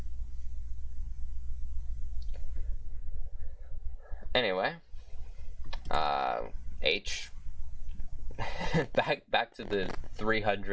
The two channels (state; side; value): identical; both; correlation 1.00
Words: Anyway, H. back to the